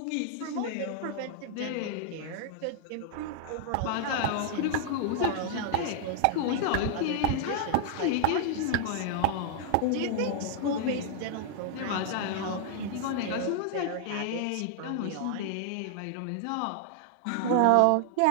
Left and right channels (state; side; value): different; both; correlation 0.00